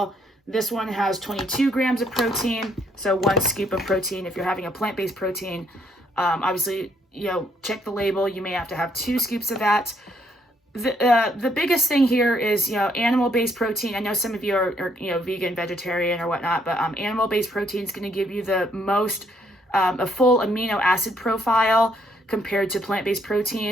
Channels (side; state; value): both; normal; correlation 0.70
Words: This one has 22 grams of protein. So 1 scoop of protein. If you're having a plant-based protein, obviously, check the label. You may have to have 2 scoops of that. The biggest thing here is, animal-based protein. I know some of you are vegan, vegetarian or whatnot, but animal-based protein is going to give you the most, a full amino acid profile compared to plant-based